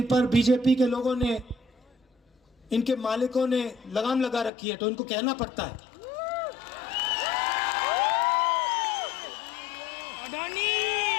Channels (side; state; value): right; drops out; at 4.5 s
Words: पर बीजेपी के लोगों ने, इनके मालिकों ने लगाम लगा रखी है, तो इनको कहना पड़ता है।